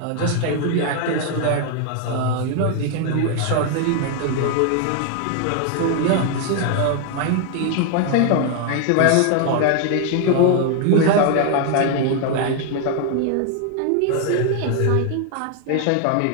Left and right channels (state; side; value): different; both; correlation 0.00